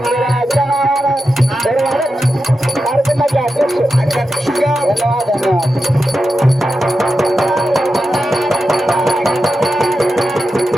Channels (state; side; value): normal; both; correlation 0.90